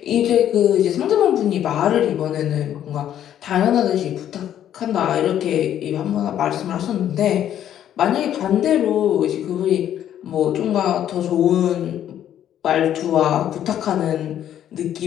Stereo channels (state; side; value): quieter; right; 10.7 dB